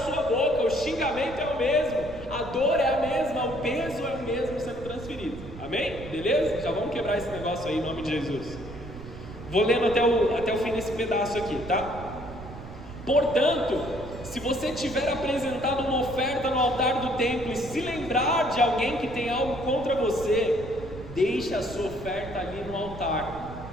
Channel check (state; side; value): noise; right; rumble, 13 dB below the sound